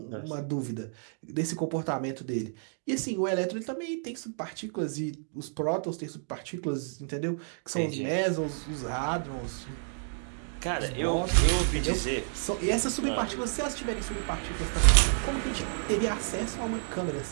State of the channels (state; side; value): silent; left; digital silence